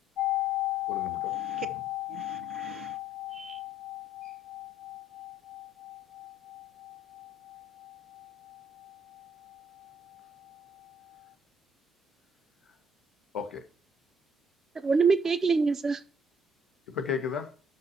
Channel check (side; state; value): both; normal; correlation 0.62